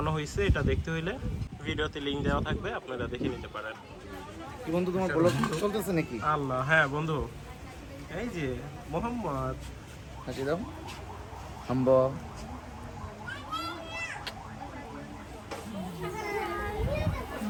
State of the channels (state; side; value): identical; both; correlation 1.00